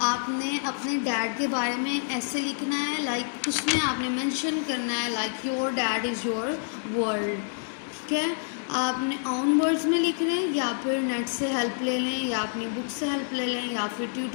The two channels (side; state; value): right; silent; 60 dB below the other